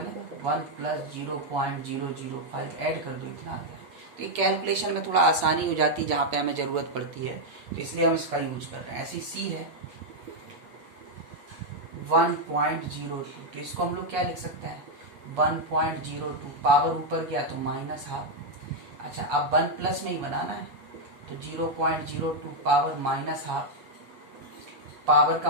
1 + 0.005 ऐड कर दो, इतना आ गया। तो ये कैलकुलेशन में थोड़ा आसानी हो जाती है जहाँ पे हमें ज़रूरत पड़ती है, तो इसलिए हम इसका यूज कर रहे हैं। ऐसी सी है 1.02, तो इसको हम लोग क्या लिख सकते हैं 1.02, पावर ऊपर गया तो माइनस हाफ। अच्छा, अब 1 प्लस में ही बनाना है, तो 0.02 पावर माइनस हाफ, पावर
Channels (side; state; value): left; late; 8.4 ms